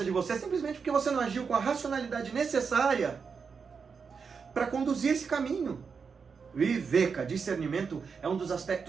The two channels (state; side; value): quieter; left; 5.7 dB